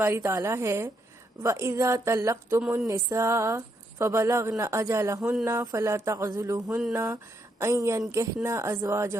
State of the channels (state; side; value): normal; both; correlation 0.77